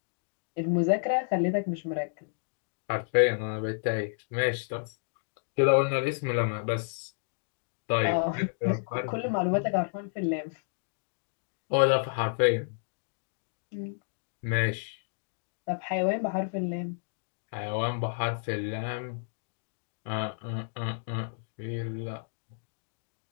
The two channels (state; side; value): silent; right; digital silence